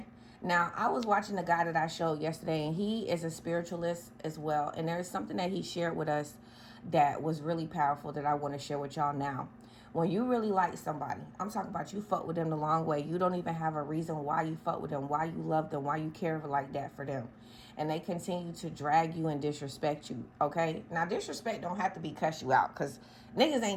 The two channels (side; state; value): both; identical; correlation 1.00